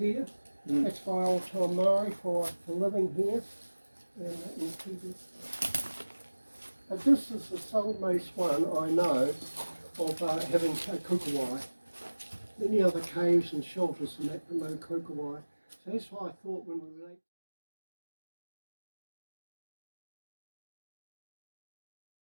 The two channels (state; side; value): inverted; both; correlation -1.00